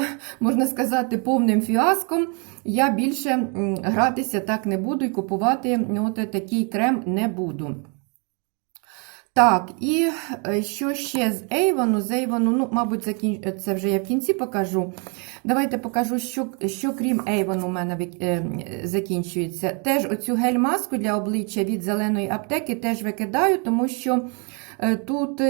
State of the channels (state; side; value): quieter; left; 35.6 dB